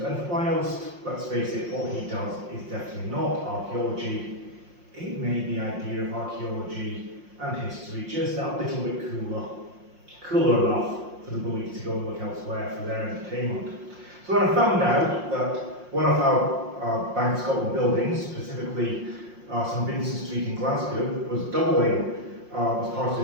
and whilst, let's face it, what he does is definitely not archaeology, it made the idea of archaeology and history just that little bit cooler enough for the bullies to go and look elsewhere for their entertainment. So when I found out that one of our Bank of Scotland buildings, specifically St Vincent Street in Glasgow, was doubling as part of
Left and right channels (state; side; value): late; left; 5.6 ms